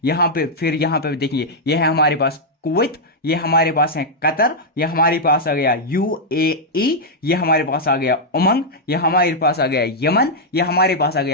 यहां पे फिर यहां पे देखेंगे, ये है हमारे पास कुवैत, ये हमारे पास है कतर, ये हमारे पास आ गया यूएई, ये हमारे पास आ गया उमंग, ये हमारे पास आ गया यमन, ये हमारे पास आ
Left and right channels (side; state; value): both; normal; correlation -0.04